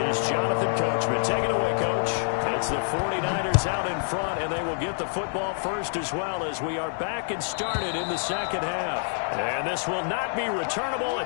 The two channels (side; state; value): right; silent; 60 dB below the other